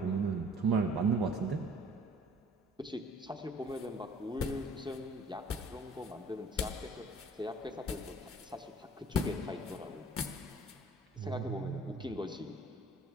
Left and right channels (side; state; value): both; normal; correlation 0.53